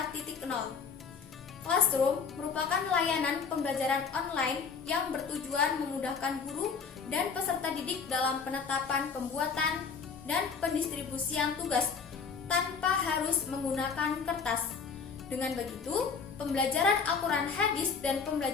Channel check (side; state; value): right; quieter; 5.7 dB